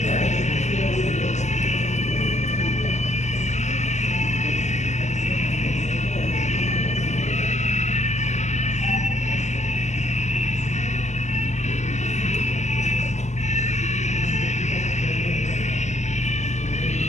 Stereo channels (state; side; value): late; right; 0.33 ms